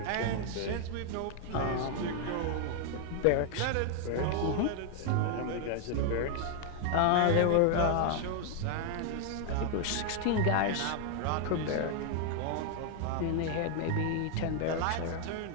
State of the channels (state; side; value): different; both; correlation 0.00